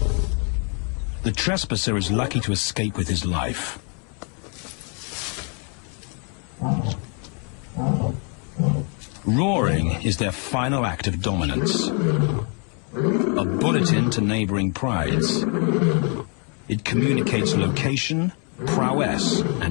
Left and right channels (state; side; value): quieter; right; 38.1 dB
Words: The trespasser is lucky to escape with his life. Roaring is their final act of dominance. A bulletin to neighboring prides. It communicates location, prowess,